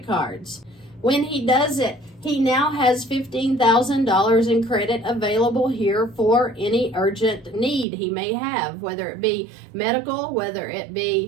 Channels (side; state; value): left; drops out; at 7.9 s